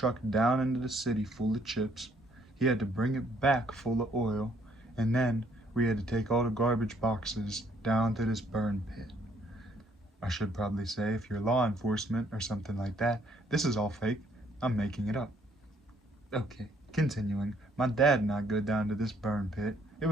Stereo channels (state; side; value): normal; both; correlation 0.67